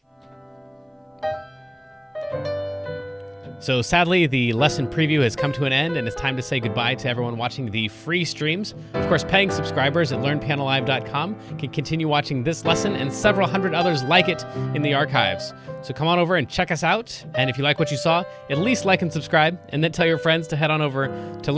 So sadly, the lesson preview has come to an end, and it's time to say goodbye to everyone watching the free streams. Of course, paying subscribers at learnpianolive.com can continue watching this lesson and several hundred others like it in the archives. So come on over and check us out. And if you like what you saw, at least like and subscribe, and then tell your friends to head on over to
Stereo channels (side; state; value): both; identical; correlation 1.00